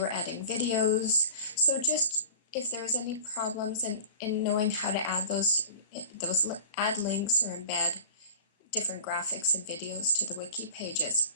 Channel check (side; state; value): both; inverted; correlation -0.39